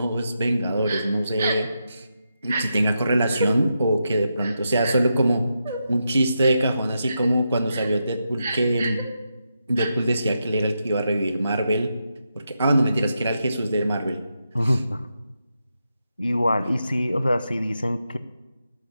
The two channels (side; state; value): both; inverted; correlation -0.85